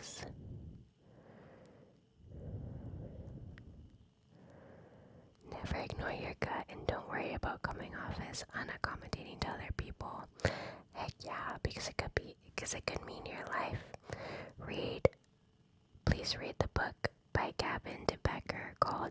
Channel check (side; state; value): both; identical; correlation 1.00